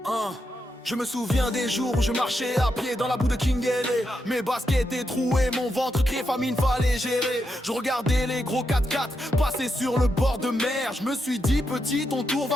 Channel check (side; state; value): both; normal; correlation 0.84